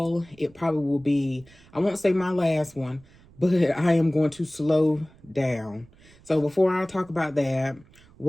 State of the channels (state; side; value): noise; right; rumble, 27 dB below the sound